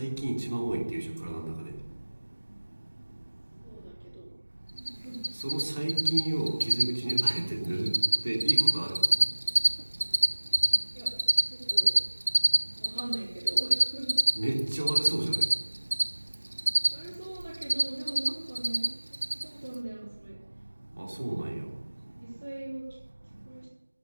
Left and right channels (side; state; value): both; inverted; correlation -1.00